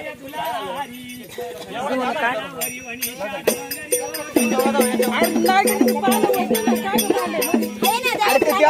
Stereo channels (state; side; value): identical; both; correlation 1.00